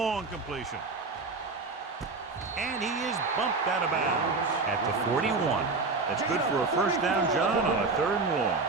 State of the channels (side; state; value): left; quieter; 3.9 dB